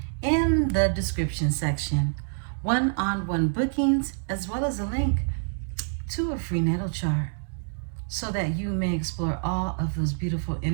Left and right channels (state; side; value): silent; left; digital silence